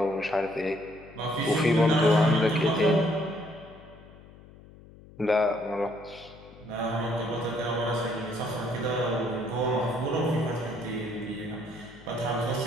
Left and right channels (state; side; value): noise; left; hum, 21 dB below the sound